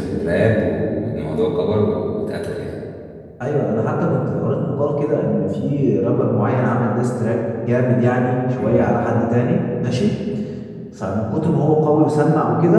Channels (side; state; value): both; identical; correlation 1.00